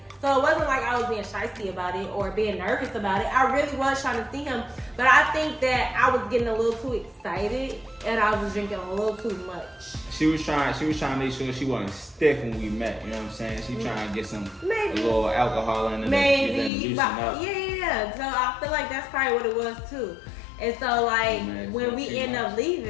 So it wasn't like I was being shysty about it or being nervous about it. I really was trying to see him. But I think that I was getting a little too excited and I was drinking a little too much. She was trying to make sure she wasn't stiff when we met. You know what I'm saying? She trying to get a little alcohol in it. Maybe, but yeah. So I feel like that's probably what it was too. And so like when we 2 end up months.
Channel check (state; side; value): drops out; right; at 16.7 s